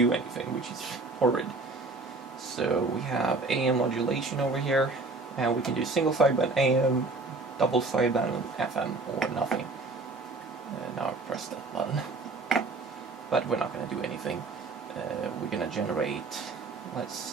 anything, which is horrid. So we have AM modulation over here, and we can do single sideband AM, double sideband FM, or nothing. Now I press that button. But we're not going to do anything. We're going to generate,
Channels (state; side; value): quieter; left; 3.5 dB